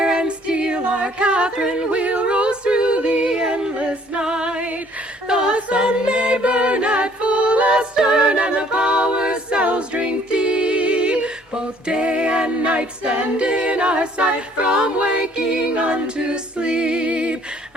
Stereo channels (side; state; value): both; normal; correlation 0.59